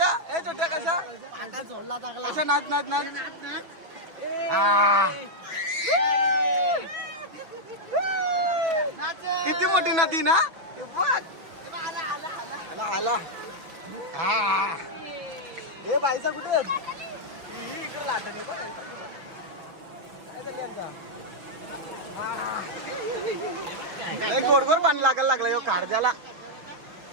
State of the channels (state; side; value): late; left; 5.9 ms